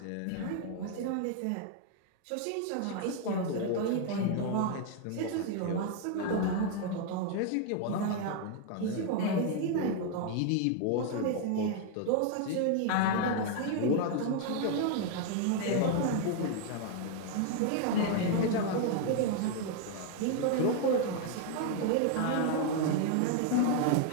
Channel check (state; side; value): different; both; correlation 0.00